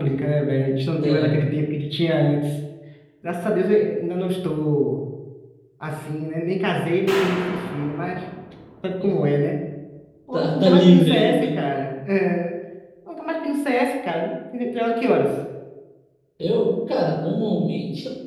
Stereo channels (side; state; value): both; identical; correlation 1.00